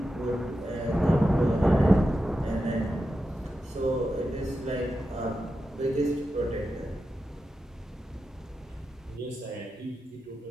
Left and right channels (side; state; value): both; normal; correlation 0.90